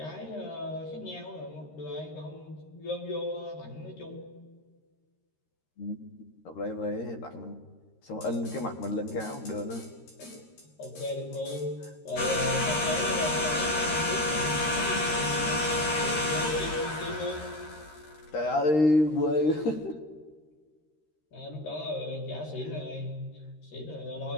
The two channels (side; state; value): right; late; 13 ms